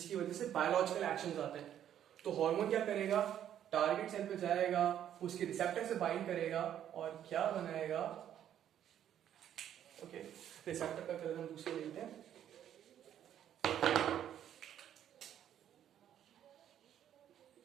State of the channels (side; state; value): left; quieter; 10.4 dB